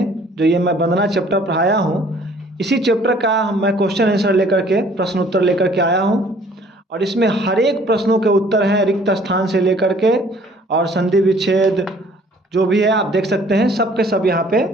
जो ये मैं वंदना चैप्टर पढ़ाया हूँ, इसी चैप्टर का मैं क्वेश्चन आंसर लेकर के प्रश्न उत्तर लेकर के आया हूँ। और इसमें हर एक प्रश्नों के उत्तर हैं, रिक्त स्थान से लेकर के और संधि विच्छेद जो भी है आप देख सकते हैं, सब के सब यहाँ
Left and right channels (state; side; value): normal; both; correlation 0.56